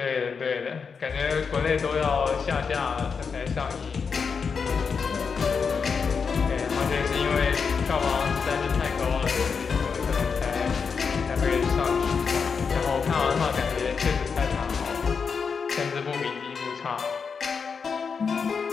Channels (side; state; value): right; quieter; 5.7 dB